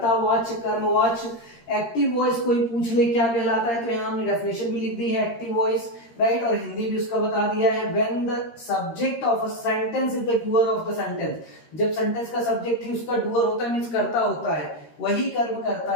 कर्मवाच्य। एक्टिव वॉइस कोई पूछ ले क्या कहलाता है, तो यहां हमने डेफिनेशन भी लिख दी है एक्टिव वॉइस, राइट, और हिंदी भी उसका बता दिया है। When the subject of a sentence is the doer of the sentence, जब सेंटेंस का सब्जेक्ट ही उसका डूअर होता है, मींस कर्ता होता है, वही कर्म करता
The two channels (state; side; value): late; right; 13 ms